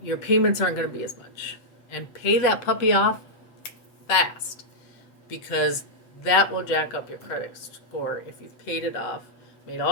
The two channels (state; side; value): late; right; 8.2 ms